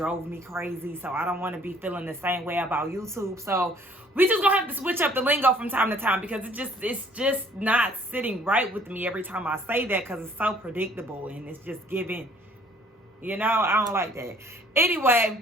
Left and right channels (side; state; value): both; normal; correlation 0.58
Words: me crazy. So I don't want to be feeling the same way about YouTube. So we just gonna have to switch up the lingo from time to time because it's just not sitting right with me every time I say that because it's so predictable and it's just giving, you know, I don't like that.